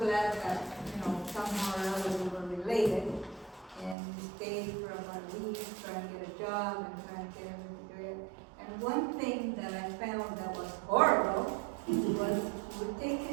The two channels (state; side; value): drops out; left; at 4.0 s